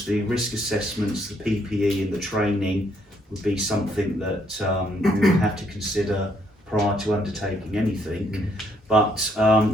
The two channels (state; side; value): normal; both; correlation 0.70